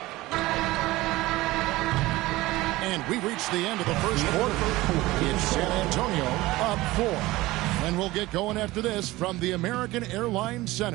And we've reached the end of the first quarter. It's San Antonio up 4. And we'll get going after this from the American Airlines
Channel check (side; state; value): left; quieter; 19.0 dB